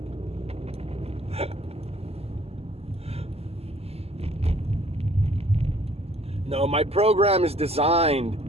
No, my program is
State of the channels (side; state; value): left; late; 0.29 ms